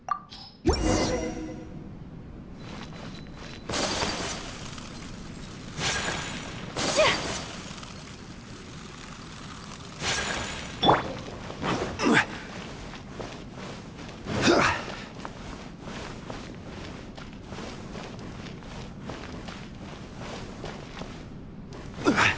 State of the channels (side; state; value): both; identical; correlation 1.00